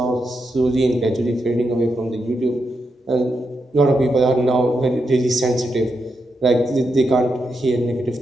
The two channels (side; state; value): both; normal; correlation 0.84